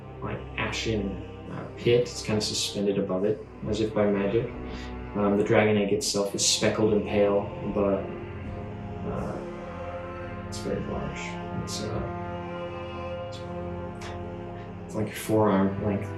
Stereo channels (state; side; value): identical; both; correlation 1.00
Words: like ashen pit. It's kind of suspended above it, as if by magic. The dragon egg itself is speckled and pale, but it's very large. It's like your forearm length.